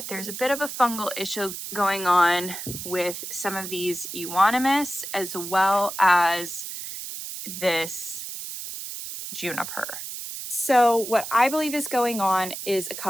there's a bit of a fungal issue going on with some of these Euonymus as well as this juniper. So what I believe is going on is a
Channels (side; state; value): right; noise; hiss, 8 dB below the sound